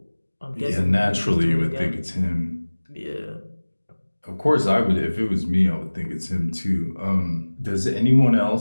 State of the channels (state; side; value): inverted; both; correlation -1.00